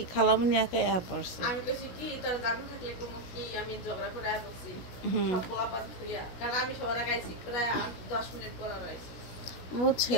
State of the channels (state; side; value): late; right; 16 ms